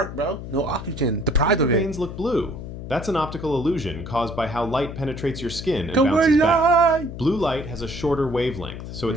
bro. No oxygen. Deprived do of your it. veins look blue? That's an optical illusion caused by how light penetrates your skin and Go bounces back. light. Blue light has a shorter wavelength, so it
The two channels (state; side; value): noise; left; hum, 9 dB below the sound